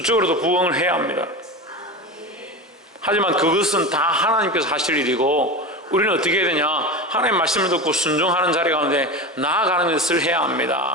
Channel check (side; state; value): both; normal; correlation 0.25